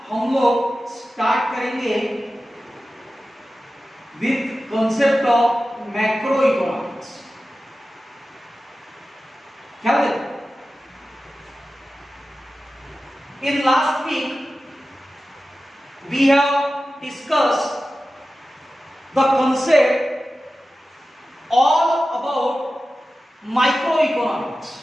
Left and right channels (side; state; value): both; normal; correlation 0.94